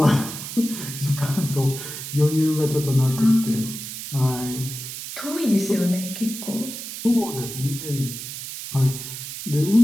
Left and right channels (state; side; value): noise; right; hiss, 8 dB below the sound